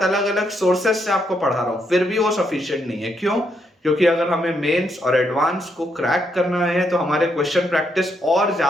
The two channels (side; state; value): both; normal; correlation 0.77